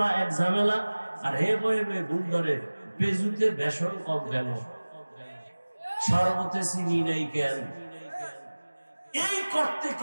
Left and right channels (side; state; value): both; inverted; correlation -1.00